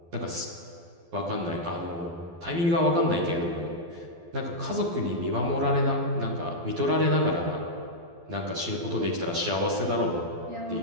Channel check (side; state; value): left; late; 12 ms